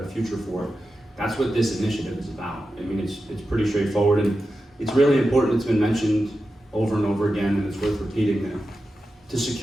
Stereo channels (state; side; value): normal; both; correlation 0.91